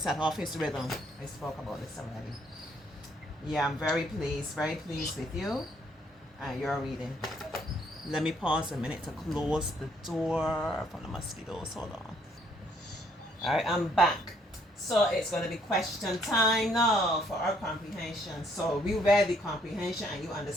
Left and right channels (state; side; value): normal; both; correlation 0.67